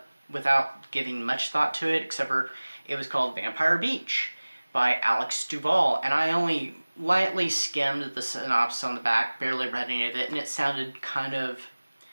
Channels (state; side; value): inverted; both; correlation -1.00